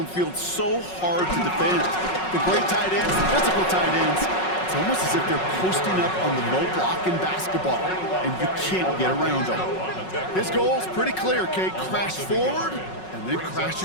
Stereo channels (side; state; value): right; late; 5.4 ms